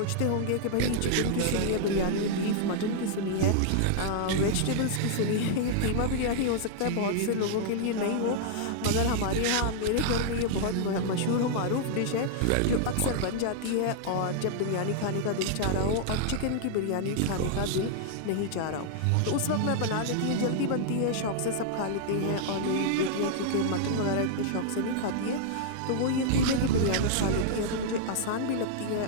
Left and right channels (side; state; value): both; different; correlation -0.01